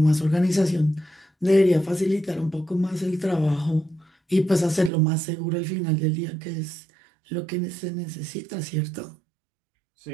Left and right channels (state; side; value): drops out; left; at 4.9 s